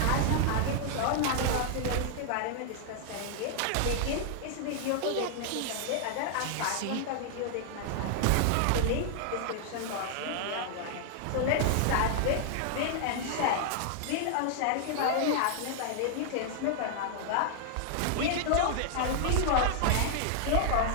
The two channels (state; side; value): different; both; correlation 0.00